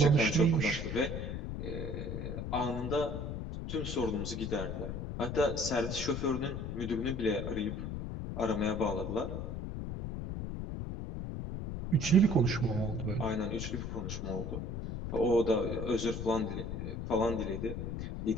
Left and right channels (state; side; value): noise; left; rumble, 5 dB below the sound